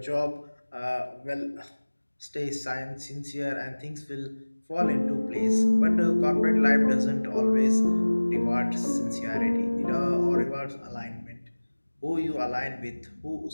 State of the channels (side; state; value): both; inverted; correlation -1.00